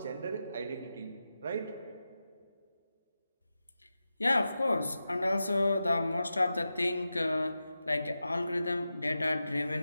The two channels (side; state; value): both; inverted; correlation -0.92